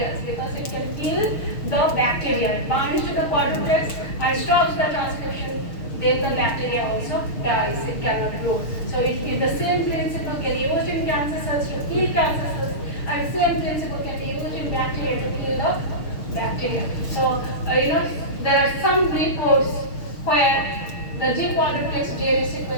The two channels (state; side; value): late; right; 6.5 ms